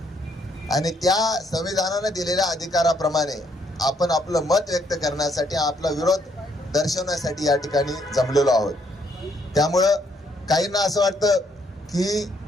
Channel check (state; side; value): normal; both; correlation 0.70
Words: आणि त्या संविधानानं दिलेल्या अधिकाराप्रमाणे आपण आपलं मत व्यक्त करण्यासाठी, आपला विरोध दर्शवण्यासाठी या ठिकाणी जमलेलो आहोत. त्यामुळं काहींना असं वाटतं की